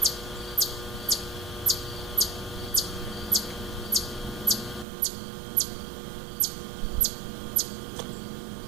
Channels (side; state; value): left; drops out; at 4.9 s